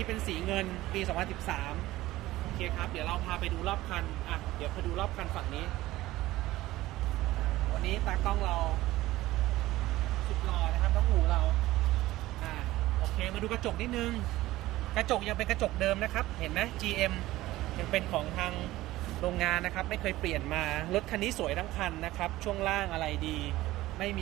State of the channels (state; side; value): quieter; left; 16.9 dB